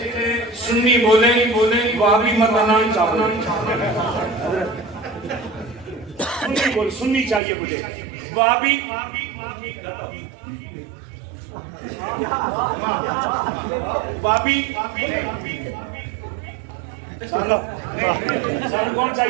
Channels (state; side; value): drops out; left; at 7.4 s